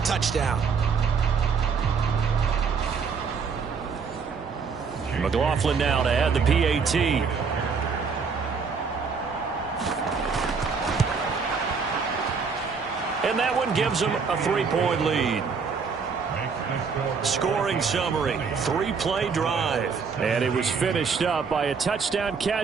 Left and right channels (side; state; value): left; quieter; 5.5 dB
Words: touchdown. McLaughlin now to add the PAT. And that one gives them a 3-point lead. Scoring summary, 3-play drive. And it was finished up by a touchdown